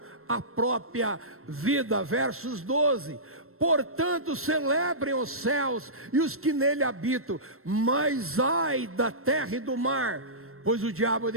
a própria vida. Versos 12: portanto celebrem os céus e os que nele habitam, mas ai da terra e do mar, pois o diabo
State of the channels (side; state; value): left; late; 0.62 ms